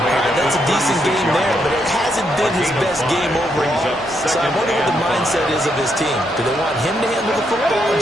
made at That's a the decent game 36-yard there, but line. it hasn't been his best game overall. So I wonder what the mindset is of his team. Do they want him to handle the football and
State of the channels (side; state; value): both; normal; correlation 0.78